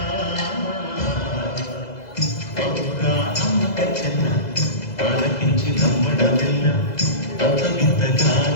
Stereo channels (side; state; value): right; late; 2.0 ms